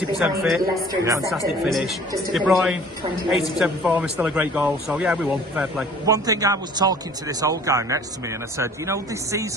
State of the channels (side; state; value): both; normal; correlation 0.50